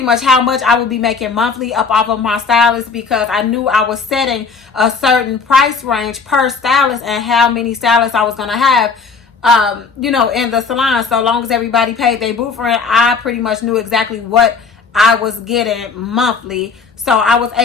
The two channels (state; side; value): quieter; right; 5.1 dB